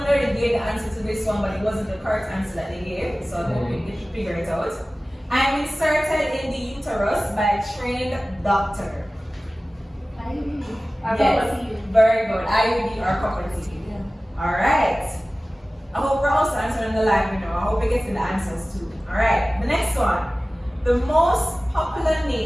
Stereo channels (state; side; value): normal; both; correlation 0.97